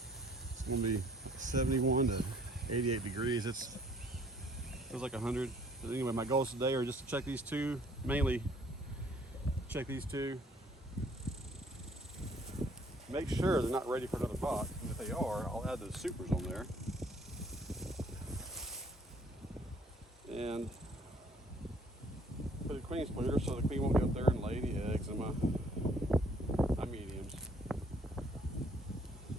It's gonna be 71 to 88 degrees. It feels like 100. But anyway, my goals today are just to check these two, mainly check these two. Make sure they're not ready for another pot. And if they are, I'll add those supers on there. And put a queen splitter so the queen won't get up there and lay any eggs in my mediums.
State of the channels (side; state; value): both; normal; correlation 0.60